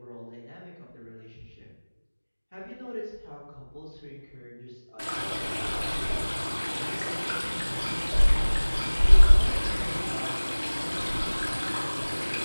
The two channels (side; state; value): both; inverted; correlation -1.00